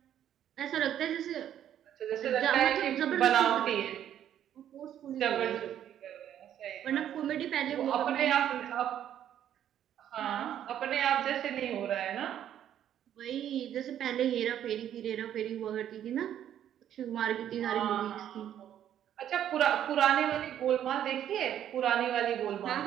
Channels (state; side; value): quieter; left; 10.5 dB